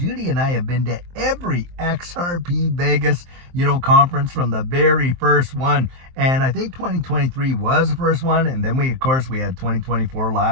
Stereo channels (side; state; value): left; late; 23 ms